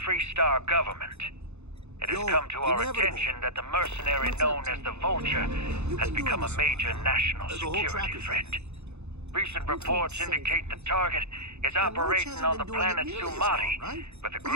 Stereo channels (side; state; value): left; late; 0.81 ms